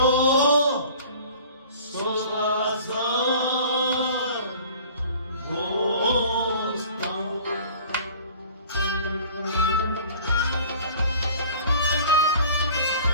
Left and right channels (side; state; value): both; inverted; correlation -0.47